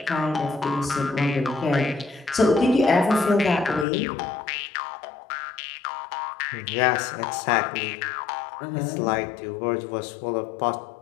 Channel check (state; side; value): drops out; right; at 3.9 s